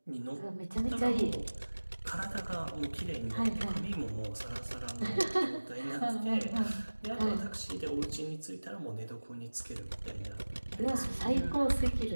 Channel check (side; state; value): both; inverted; correlation -1.00